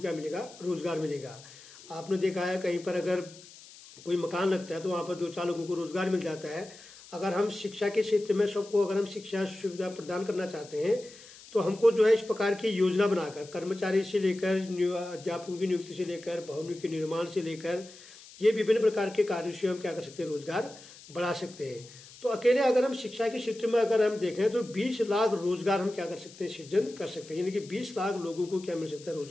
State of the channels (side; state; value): left; noise; hiss, 20 dB below the sound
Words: मिलेगा, रोजगार मिलेगा। आपने देखा है कहीं पर अगर कोई मकान लगता है तो वहां पर 2-4 लोगों को रोजगार मिल जाता है। अगर हम शिक्षा के क्षेत्र में सबको अगर हम शिक्षा सुविधा प्रदान करना चाहते हैं, तो हमको जो है इस प्रकार की योजना बनाकर, कर्मचारी से लेकर, अध्यापकों की नियुक्ति से लेकर, भवनों के निर्माण से लेकर, ये विभिन्न प्रकार के कार्यों से हम क्या कर सकते हैं, रोजगार बढ़ा सकते हैं। तो अकेले अगर हम शिक्षा के क्षेत्र में अगर हम देखें तो 20 लाख रोजगार हम क्या कर सकते हैं, सृजन कर सकते हैं। यानी कि 20 लाख लोगों को क्या मिल सकता है,